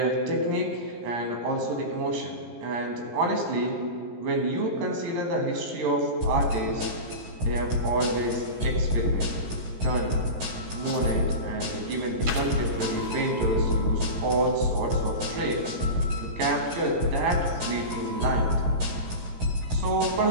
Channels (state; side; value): late; left; 17 ms